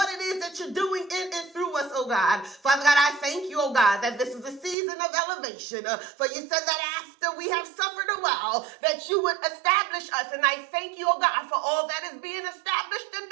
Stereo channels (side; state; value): left; drops out; at 4.8 s